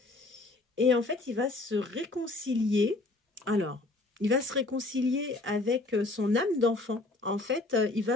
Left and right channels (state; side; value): quieter; right; 3.1 dB